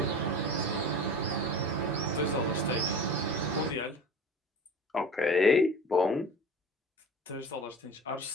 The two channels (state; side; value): normal; both; correlation 0.37